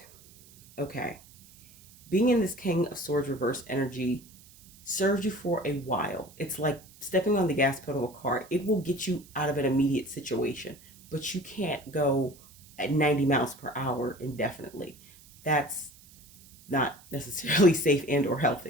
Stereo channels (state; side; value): noise; right; hiss, 24 dB below the sound